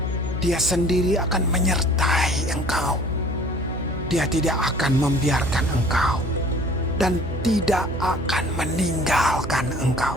Dia sendiri akan menyertai engkau. Dia tidak akan membiarkan engkau dan tidak akan meninggalkan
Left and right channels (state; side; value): noise; right; hum, 8 dB below the sound